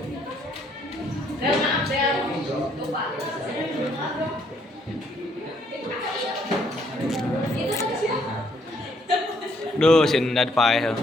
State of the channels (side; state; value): both; normal; correlation 0.68